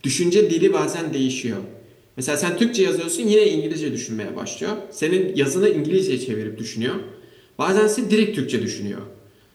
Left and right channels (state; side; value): identical; both; correlation 1.00